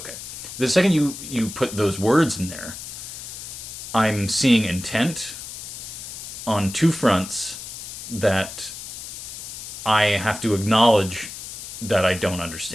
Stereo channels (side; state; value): left; noise; hiss, 10 dB below the sound